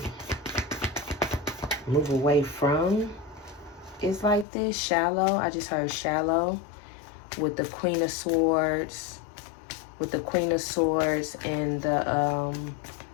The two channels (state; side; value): drops out; right; at 4.5 s